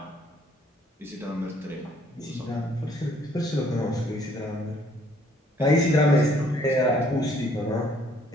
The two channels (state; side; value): normal; both; correlation 0.63